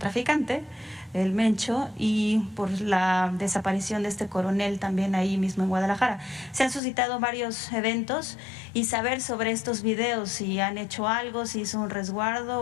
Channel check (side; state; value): right; drops out; at 6.8 s